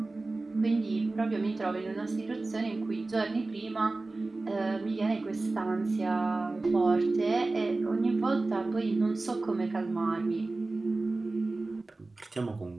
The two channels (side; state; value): left; quieter; 3.2 dB